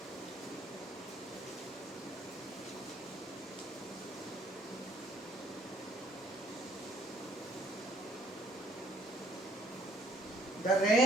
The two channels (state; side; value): normal; both; correlation 0.63